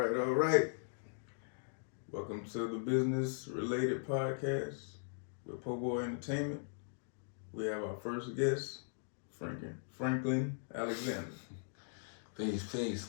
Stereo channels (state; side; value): silent; right; digital silence